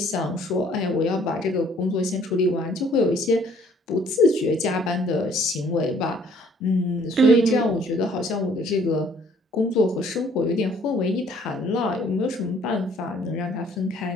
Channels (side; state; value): both; normal; correlation 0.60